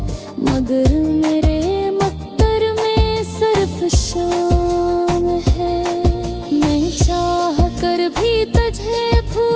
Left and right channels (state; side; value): identical; both; correlation 1.00